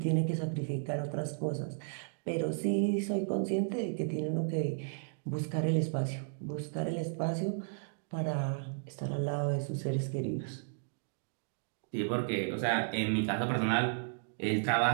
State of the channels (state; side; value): silent; left; digital silence